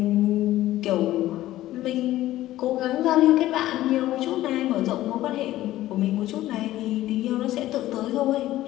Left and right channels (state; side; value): quieter; right; 15.0 dB